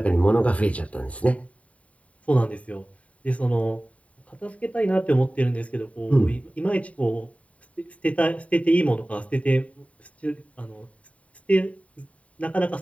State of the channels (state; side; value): late; right; 0.066 ms